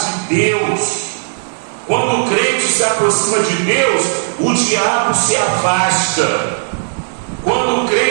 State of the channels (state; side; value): silent; left; digital silence